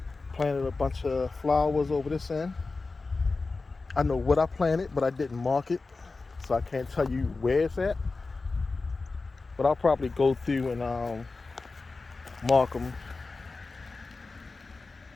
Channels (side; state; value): right; quieter; 3.8 dB